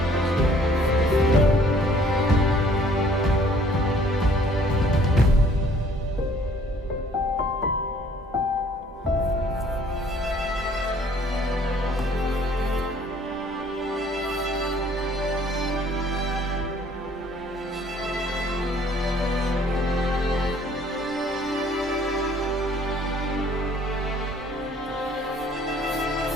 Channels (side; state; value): both; normal; correlation 0.58